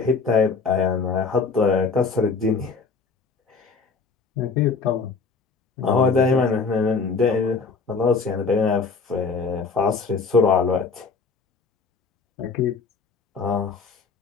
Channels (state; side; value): quieter; right; 4.7 dB